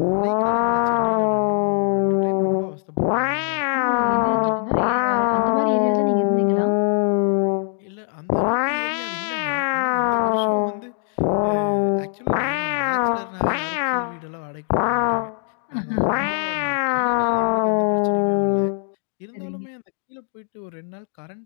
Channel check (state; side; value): silent; right; digital silence